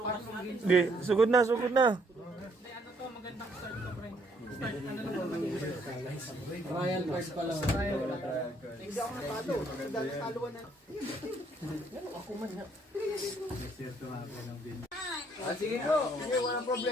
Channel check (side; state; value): both; normal; correlation 0.67